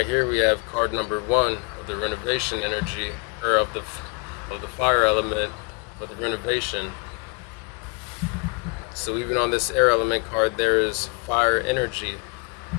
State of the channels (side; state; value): right; quieter; 35.7 dB